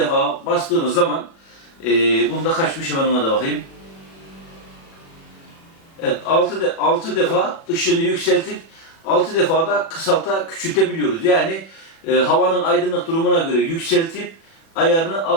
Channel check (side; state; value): right; late; 36 ms